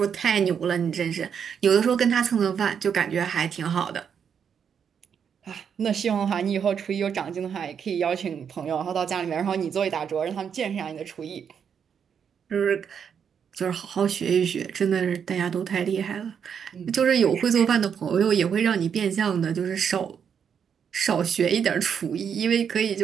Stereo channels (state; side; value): quieter; left; 7.4 dB